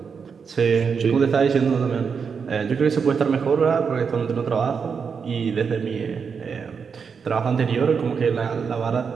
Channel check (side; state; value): left; quieter; 6.0 dB